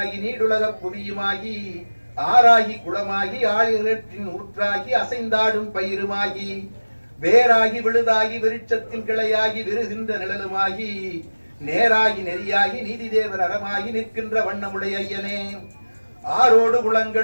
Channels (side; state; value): both; inverted; correlation -1.00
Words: நீடுலக புவியுமாகி ஆறாகி குளமாகி ஆழிகளின் ஊற்றாகி அசைந்தாடும் பயிருமாகி வேராகி விழுதாகி விருட்சத்தின் கிளையாகி விருகின்ற நிழலுமாகி நேராகி நெறியாகி நீதி தேவர் அறமாகி நிற்கின்ற வண்ணமுடைய ஐயனே ஆரோடு